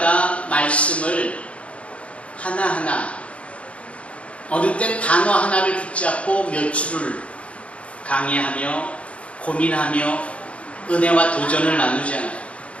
말씀을 하나하나 어느 땐 단어 하나를 붙잡고 몇 줄을 강의하며 고민하며 은혜와 도전을 나누잖아요.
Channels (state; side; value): late; right; 0.062 ms